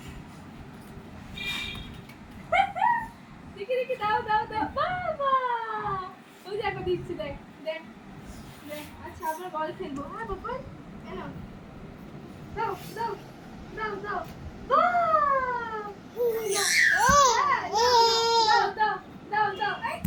দেখি দেখি দাও দাও দাও বাবা ওই যে একবার দিচ্ছি দেখ দেখ দেখ আচ্ছা আমরা বল খেলবো হ্যাঁ বাবা এনো দাও দাও দাও দাও দাও দাও দাও দাও এই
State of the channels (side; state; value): both; identical; correlation 1.00